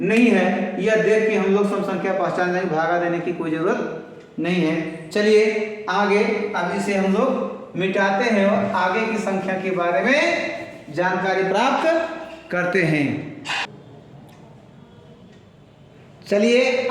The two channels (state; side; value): identical; both; correlation 1.00